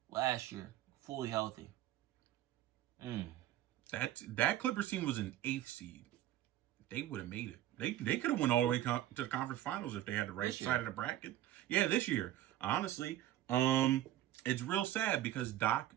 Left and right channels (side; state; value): left; quieter; 13.2 dB